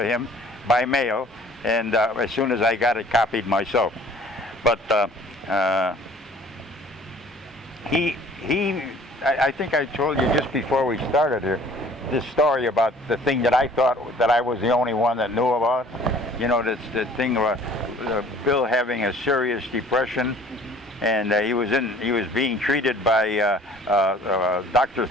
him by mail, and as soon as I got it copied myself. But I think I told you just before we started here this story about the thing that I thought that I was the only one that knew about. You know, this the thing about Bill having a serious depression, and he was being treated by Dr.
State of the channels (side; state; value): both; normal; correlation 0.52